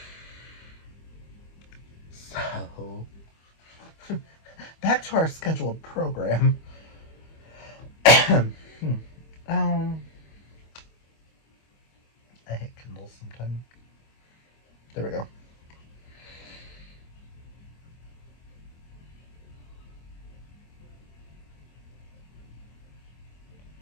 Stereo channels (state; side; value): late; right; 25 ms